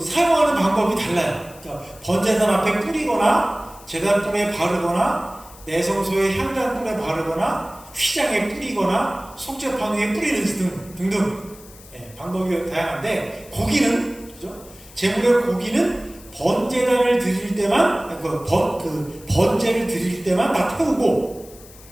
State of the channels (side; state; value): left; noise; hiss, 21 dB below the sound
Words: 사용하는 방법이 달라요. 그러니까 번제단 앞에 뿌리거나, 제단불에 바르거나, 내성소의 향단불에 바르거나, 휘장에 뿌리거나, 속죄판 위에 뿌리는 등등 방법이 다양한데, 고기는, 그죠? 제물의 고기는 번제단을 드릴 때만, 번제를 드릴 때만 다 태우고,